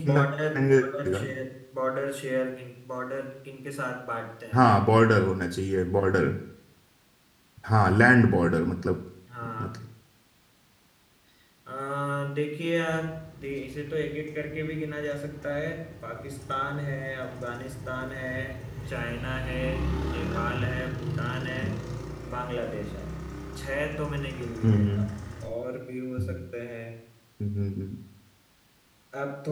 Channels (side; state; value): both; identical; correlation 1.00